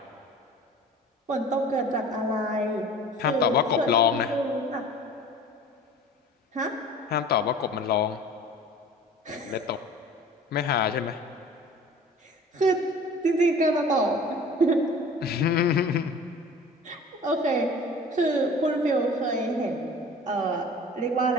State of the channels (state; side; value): normal; both; correlation 0.43